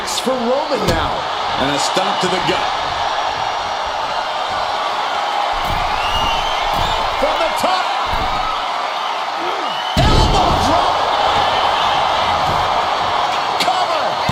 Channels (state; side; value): identical; both; correlation 1.00